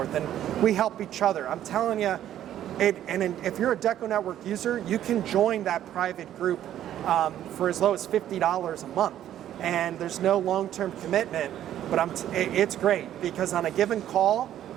and we help each other. I'm telling you, if you're a DecoNetwork user, you can join that private group for as low as $50 a month, and there's no long-term commitment, but it's great because on a given call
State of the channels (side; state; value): left; quieter; 11.5 dB